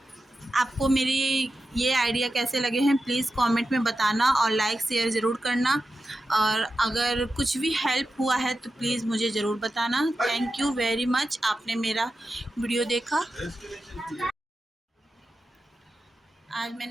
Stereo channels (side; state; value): both; normal; correlation 0.91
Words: आपको मेरी ये आइडिया कैसे लगे हैं प्लीज़ कमेंट में बताना और लाइक शेयर ज़रूर करना। और अगर कुछ भी हेल्प हुआ है तो प्लीज़ मुझे ज़रूर बताना। थैंक यू वेरी मच, आपने मेरा वीडियो देखा। आज